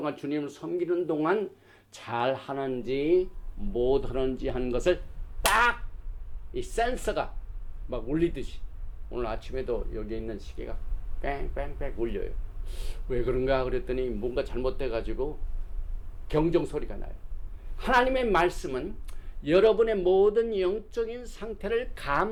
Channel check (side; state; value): both; identical; correlation 1.00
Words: 주님을 섬기는 동안 잘 하는지 못하는지 하는 것을 딱 이 센서가 막 울리듯이 오늘 아침에도 여기 있는 시계가 뺑뺑뺑 울려요. 왜 그런가 그랬더니 뭔가 잘못돼 가지고 경종 소리가 나요. 하나님의 말씀은 여러분의 모든 영적인 상태를